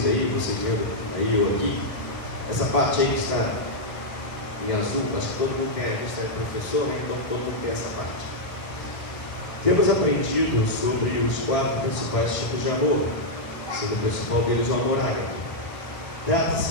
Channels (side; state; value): right; late; 1.1 ms